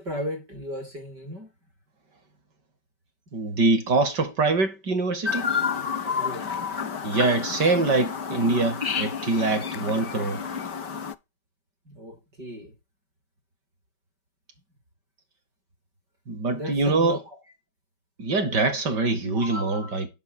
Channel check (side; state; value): left; late; 5.2 ms